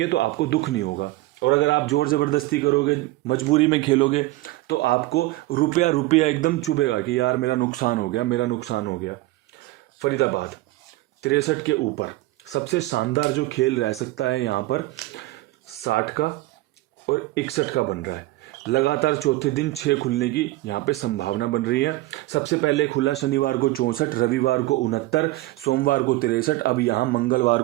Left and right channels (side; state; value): left; quieter; 18.7 dB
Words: तो आपको दुख नहीं होगा। और अगर आप जोर ज़बरदस्ती करोगे, मजबूरी में खेलोगे, तो आपको रुपया रुपया एकदम चुभेगा कि यार मेरा नुकसान हो गया, मेरा नुकसान हो गया। फरीदाबाद 63 के ऊपर सबसे शानदार जो खेल रह सकता है यहाँ पर 60 का और 61 का बन रहा है। लगातार चौथे दिन 6 खुलने की यहाँ पे संभावना बन रही है। सबसे पहले खुला शनिवार को 64, रविवार को 69, सोमवार को 63, अब यहाँ मंगलवार